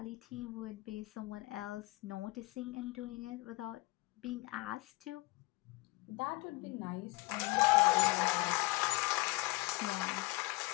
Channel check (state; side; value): quieter; right; 23.1 dB